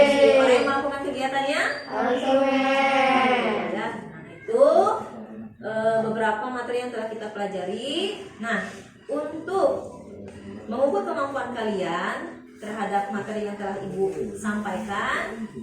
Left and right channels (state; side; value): identical; both; correlation 1.00